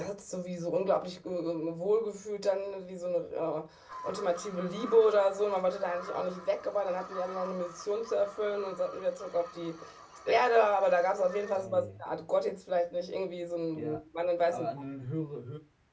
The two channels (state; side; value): identical; both; correlation 1.00